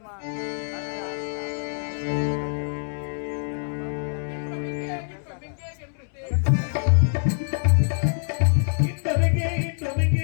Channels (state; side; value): silent; right; 62 dB below the other